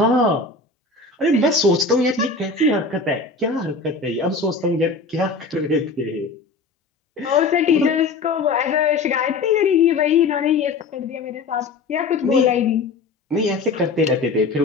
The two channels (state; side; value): quieter; right; 4.0 dB